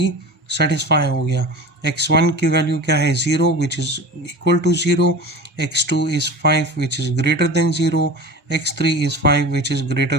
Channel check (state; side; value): normal; both; correlation 0.34